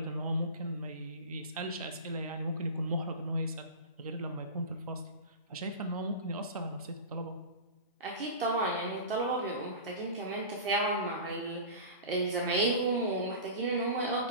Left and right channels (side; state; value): both; inverted; correlation -0.30